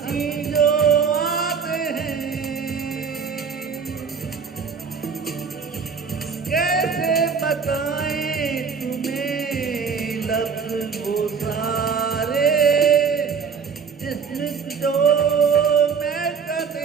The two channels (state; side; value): quieter; left; 6.1 dB